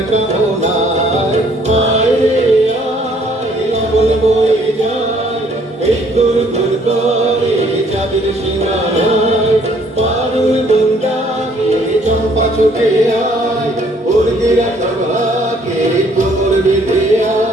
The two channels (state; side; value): normal; both; correlation 0.62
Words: কামনায়। আয় রে আয় আগুন বয়ে যায় এই দূর দূর করে চাঁদের সীমানায়। পারুল বন্ডাকে চম্পা ছুটে আয় বর্গিরা সভাকে কোমর বেঁধে